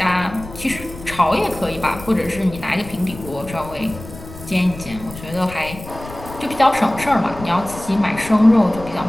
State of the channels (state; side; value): noise; left; rumble, 15 dB below the sound